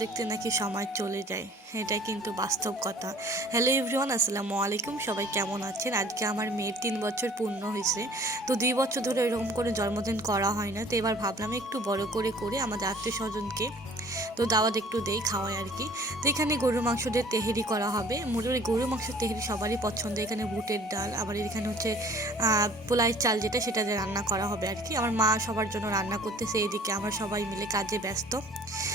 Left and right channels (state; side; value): normal; both; correlation 0.51